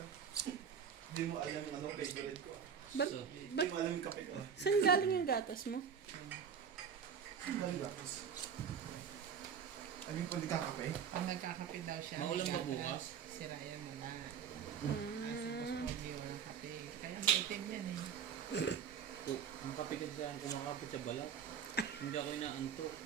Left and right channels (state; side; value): quieter; left; 7.4 dB